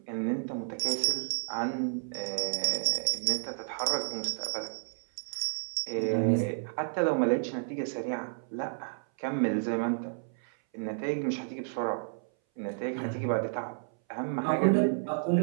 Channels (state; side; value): silent; left; 57 dB below the other